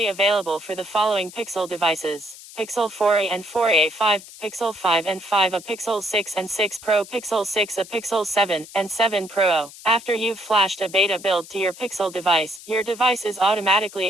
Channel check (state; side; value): noise; left; hiss, 17 dB below the sound